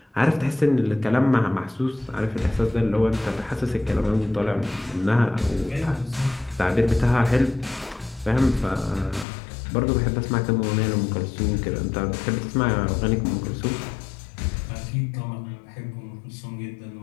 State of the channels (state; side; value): drops out; right; at 9.2 s